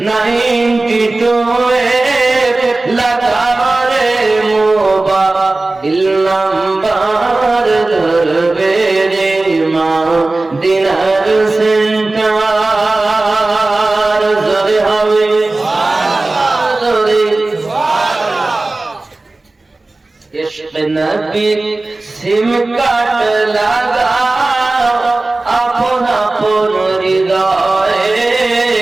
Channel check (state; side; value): quieter; left; 3.1 dB